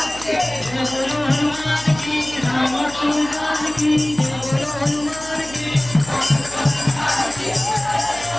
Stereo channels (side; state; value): right; noise; hum, 16 dB below the sound